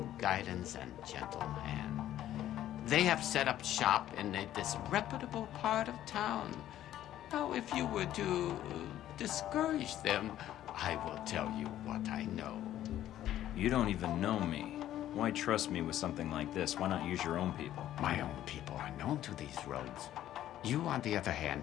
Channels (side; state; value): right; quieter; 12.5 dB